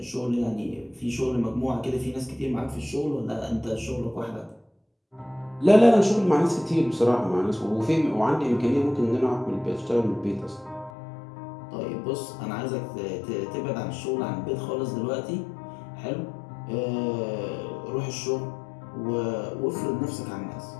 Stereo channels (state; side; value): drops out; right; at 10.9 s